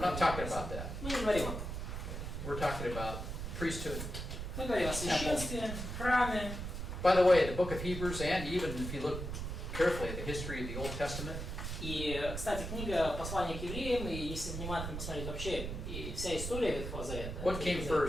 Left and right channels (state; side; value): noise; right; rumble, 5 dB below the sound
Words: not talking about that. Мы не говорим об этом. We're talking about priesthood. Мы говорим о священстве, храме. By the way, the book of Hebrews, and even if you look carefully at the history of the Old Testament, И, кстати, книга «Послание к евреям», и если внимательно посмотреть вообще, и вся история Ветхого Завета. what came